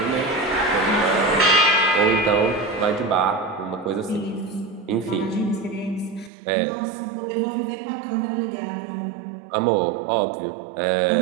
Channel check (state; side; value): drops out; left; at 6.3 s